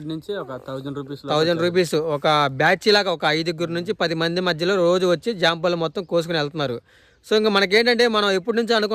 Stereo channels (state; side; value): identical; both; correlation 1.00